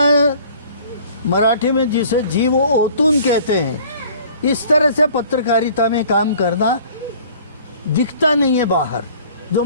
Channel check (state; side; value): inverted; both; correlation -0.51